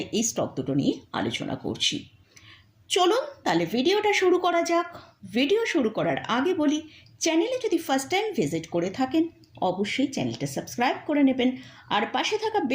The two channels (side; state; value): both; identical; correlation 1.00